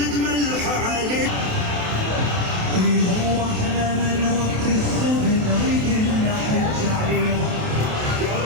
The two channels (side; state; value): left; late; 27 ms